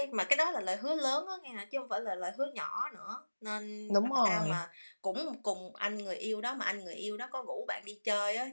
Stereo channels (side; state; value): both; inverted; correlation -1.00